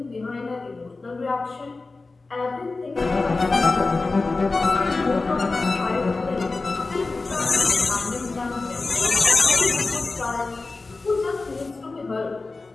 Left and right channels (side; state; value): right; quieter; 3.6 dB